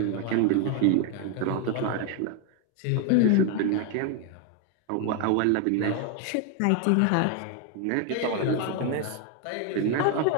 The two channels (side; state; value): both; different; correlation 0.01